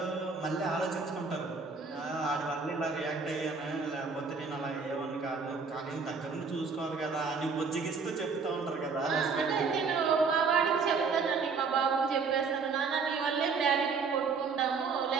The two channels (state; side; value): quieter; left; 4.9 dB